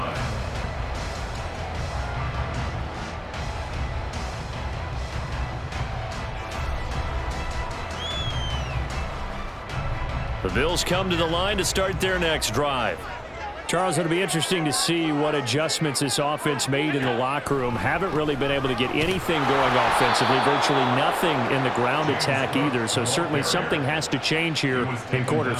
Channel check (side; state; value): both; identical; correlation 1.00